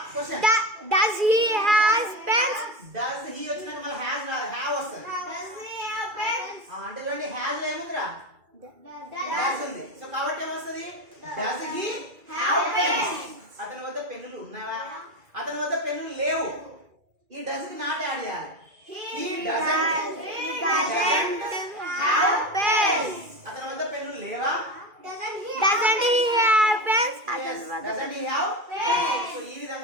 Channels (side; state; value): left; late; 2.3 ms